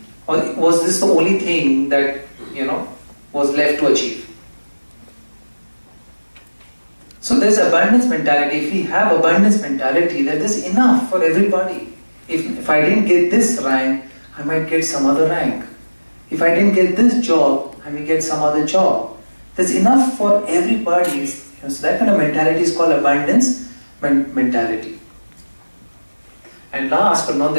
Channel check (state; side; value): inverted; both; correlation -1.00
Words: Or was this the only thing that, was left to achieve? So there's abundance mentality. If we have abundance mentality, then there's enough for everybody. If I didn't get this rank, I might get some other rank. If I didn't get this job, I may get some other job. There's enough for everybody. So that kind of mentality is called abundance mentality. And last but not